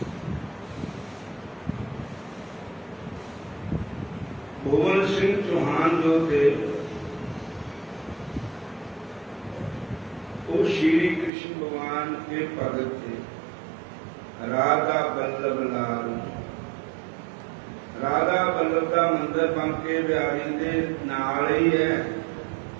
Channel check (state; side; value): drops out; left; at 11.3 s